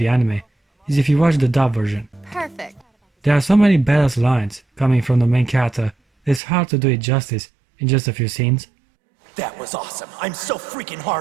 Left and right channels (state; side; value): drops out; left; at 6.4 s